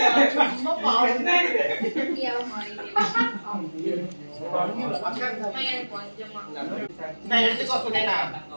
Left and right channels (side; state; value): both; inverted; correlation -1.00